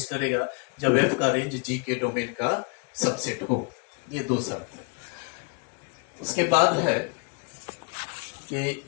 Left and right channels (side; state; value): right; quieter; 34.7 dB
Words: करेगा जब f का रेंज g के डोमेन का सबसेट हो। ये दो शर्त है। उसके बाद है कि